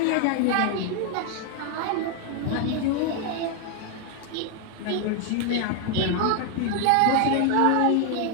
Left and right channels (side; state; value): both; different; correlation 0.00